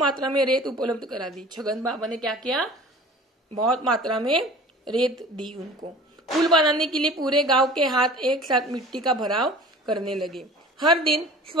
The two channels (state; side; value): normal; both; correlation 0.44